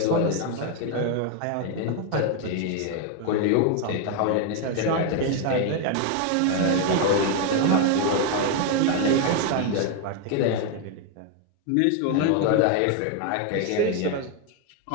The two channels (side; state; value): both; different; correlation 0.01